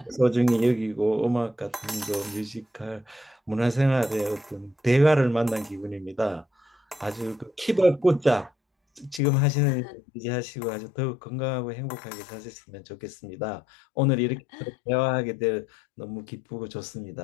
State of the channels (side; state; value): right; drops out; at 9.2 s